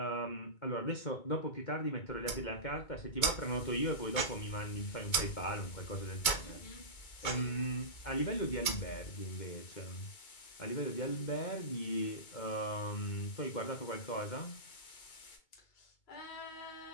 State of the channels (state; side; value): late; right; 2.2 ms